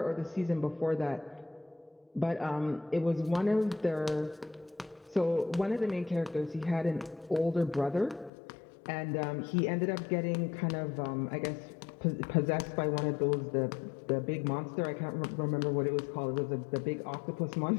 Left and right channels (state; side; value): drops out; right; at 8.3 s